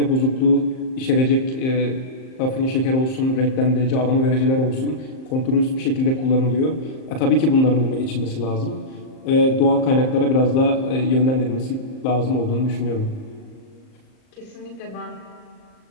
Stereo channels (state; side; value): late; right; 38 ms